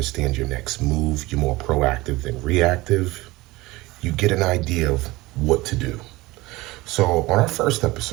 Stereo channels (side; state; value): left; quieter; 20.6 dB